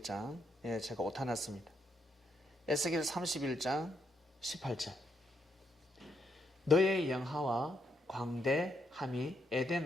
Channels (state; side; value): normal; both; correlation 0.78